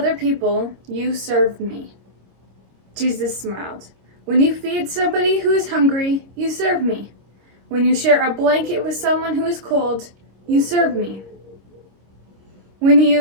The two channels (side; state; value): left; late; 26 ms